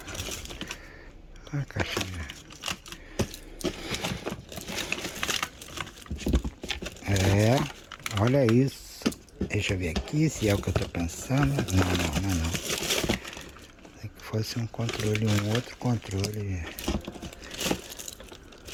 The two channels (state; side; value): identical; both; correlation 1.00